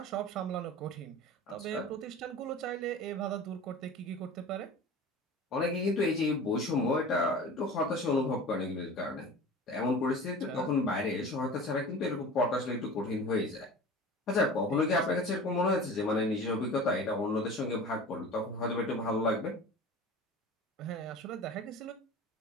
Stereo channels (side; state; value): both; normal; correlation 0.37